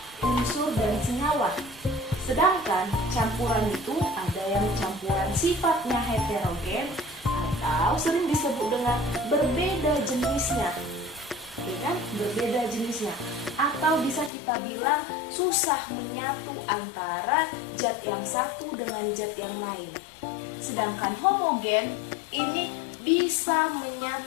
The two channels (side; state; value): right; drops out; at 14.3 s